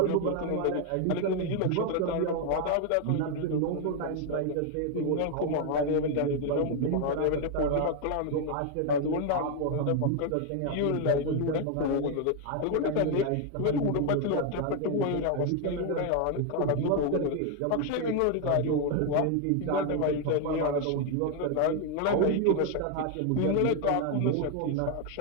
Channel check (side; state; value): both; different; correlation 0.01